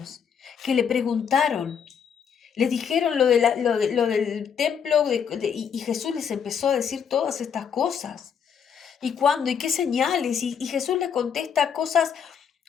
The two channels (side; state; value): right; quieter; 7.4 dB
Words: que le preguntaron. Les dijeron lo del templo y Jesús les empezó a decir todas estas cosas. ¿Y cuándo? ¿Y qué señales? Y Jesús les contesta cosas,